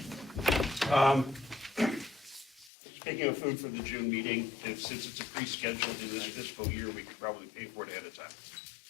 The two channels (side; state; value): right; drops out; at 2.7 s